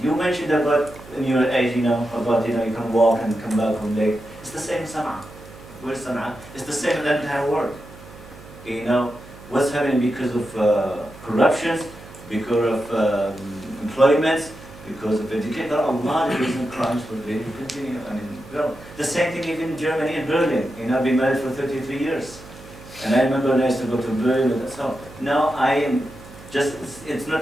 You mentioned about in your age, about you can walk and come back home late. It's the same in Sana'a. Where's Sana'a? It's the same in the entire world. What's happening because of corruptions, because of employments, because of education. There are a lot of recent crimes for they continue. The same thing even in Germany and Berlin. I've been married for 33 years. And I remember when I used to go to Berlin and so. Now I am just, it's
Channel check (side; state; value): right; noise; hum, 19 dB below the sound